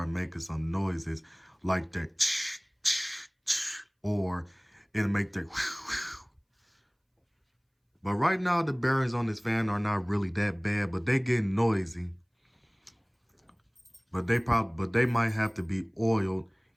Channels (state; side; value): identical; both; correlation 1.00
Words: making some noises like that, or it'll make that. But right now the bearings on this fan are not really that bad, but they get noisy. But they might have to be oiled